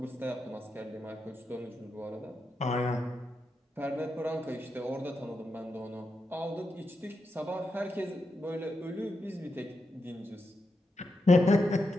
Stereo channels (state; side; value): normal; both; correlation 0.86